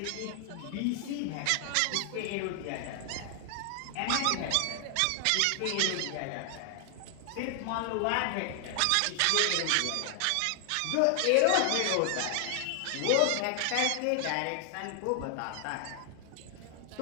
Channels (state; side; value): different; both; correlation 0.00